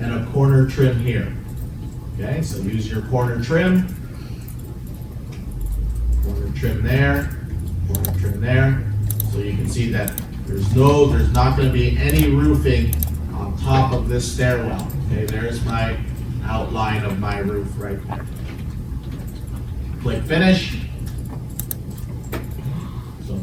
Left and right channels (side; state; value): both; identical; correlation 1.00